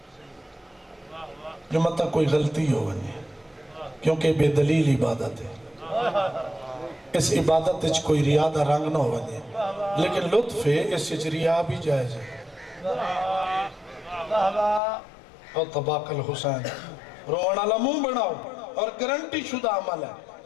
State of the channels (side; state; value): right; drops out; at 14.8 s